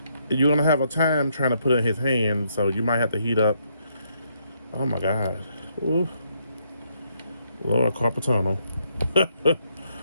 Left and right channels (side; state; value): both; inverted; correlation -0.75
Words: you're gonna have a time trying to put it in his hand, so you might have to heat up. Oh my god. Ooh. Lord, carpal tunnel.